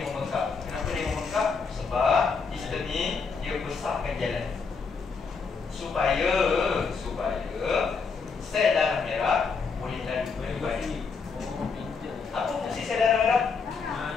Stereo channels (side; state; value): right; quieter; 5.1 dB